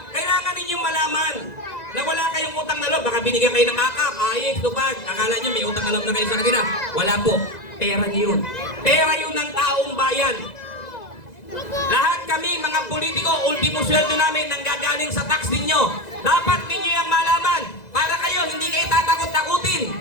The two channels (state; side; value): late; right; 2.0 ms